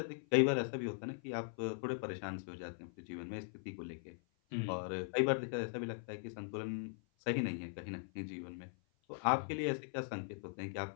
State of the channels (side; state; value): right; silent; 51 dB below the other